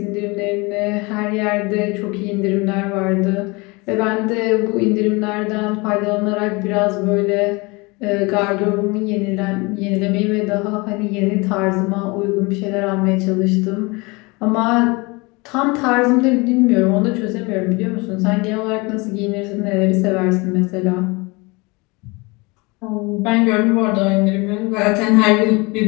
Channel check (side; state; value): right; quieter; 26.2 dB